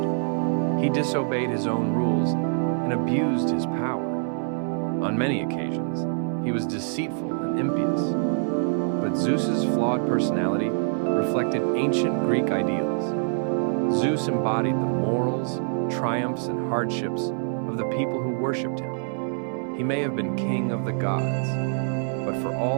He disobeyed his own rules and abused his power. On many occasions, he was deceitful and impious. But Zeus's flawed personality reflected ancient Greek ideals. Zeus embodied the morals, triumphs, and hardships of the people who worshipped him. He may have been king of the gods, but for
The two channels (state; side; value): silent; left; 59 dB below the other